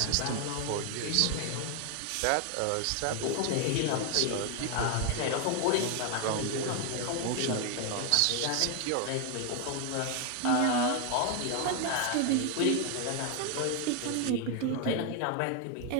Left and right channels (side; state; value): both; different; correlation 0.00